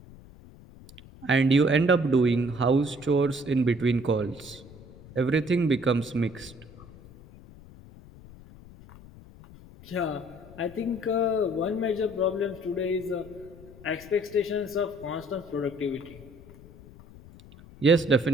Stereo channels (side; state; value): left; noise; rumble, 20 dB below the sound